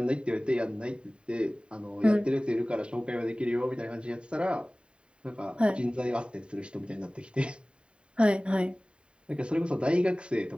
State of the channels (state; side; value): late; left; 0.053 ms